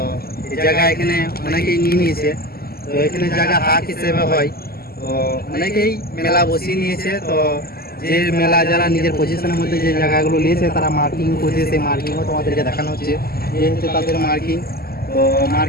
এই জায়গা এখানে অনেকেই নিয়ে নিয়েছে। তো এখানে জায়গা হাট হিসেবে হয়, তো অনেকেই মেলা বসিয়ে নিয়েছে। তো যে মেলা যারা নিজের পজিশনের মধ্যে যে জায়গাগুলো নিয়েছে তারা মার্কিং করছে, সেই মার্কিংও তোমাদেরকে দেখানো হচ্ছে। এই হচ্ছে তাদের মার্কিং। তো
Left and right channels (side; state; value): right; late; 0.45 ms